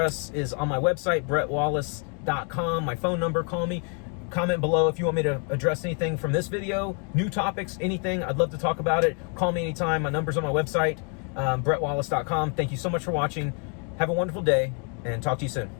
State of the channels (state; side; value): quieter; right; 39.3 dB